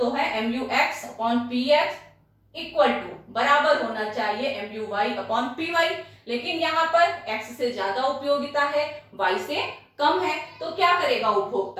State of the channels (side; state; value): both; identical; correlation 1.00